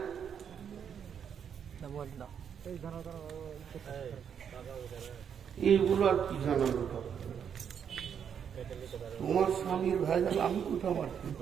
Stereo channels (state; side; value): quieter; left; 7.9 dB